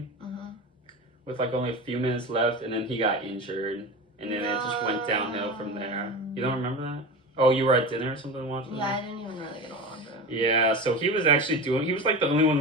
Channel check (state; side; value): normal; both; correlation 0.27